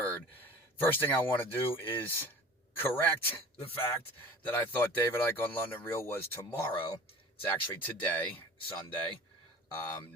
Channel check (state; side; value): normal; both; correlation 0.41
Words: First thing I want to do is correct the fact that I thought David Icke on LondonReal was tomorrow. It's actually today, Sunday,